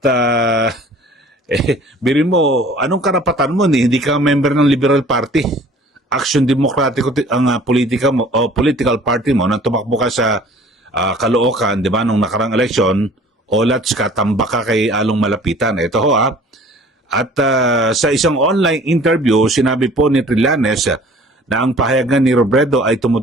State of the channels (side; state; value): both; normal; correlation 0.50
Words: birin mo, anong karapatan mo? Hindi ka member ng Liberal Party. Aksyon Demokratiko ang politika mo, o political party mo, nang tumakbo ka sa Caloocan, di ba, nung nakarang eleksyon, olats ka, tambak ka kay Along Malapitan. Ito ho At sa isang online interview, sinabi po ni Trillanes na ang pahayagan ni Robredo ay